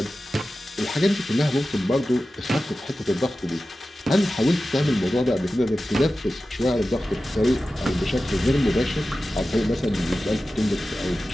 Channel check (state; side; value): normal; both; correlation 0.94